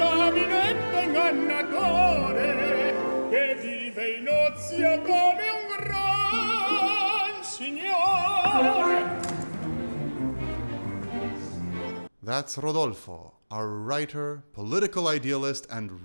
ingannatore che vive in ozio come un gran signore. That's Rodolfo, our writer, political idealist,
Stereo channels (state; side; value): inverted; both; correlation -1.00